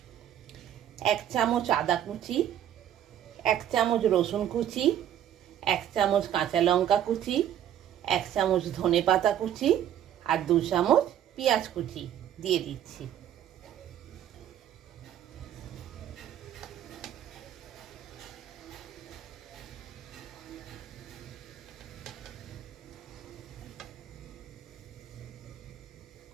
1 চামচ আদা কুচি, 1 চামচ রসুন কুচি, 1 চামচ কাঁচা লঙ্কা কুচি, 1 চামচ ধনে পাতা কুচি, আর 2 চামচ পেঁয়াজ কুচি দিয়ে দিচ্ছি।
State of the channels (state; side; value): quieter; left; 10.8 dB